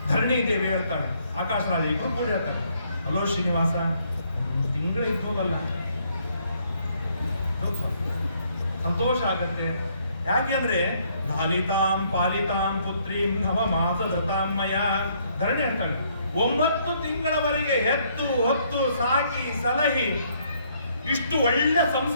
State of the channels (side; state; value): both; inverted; correlation -0.68